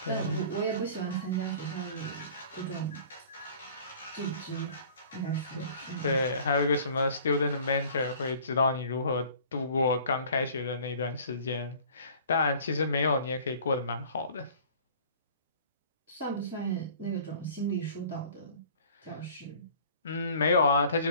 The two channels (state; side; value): inverted; both; correlation -0.49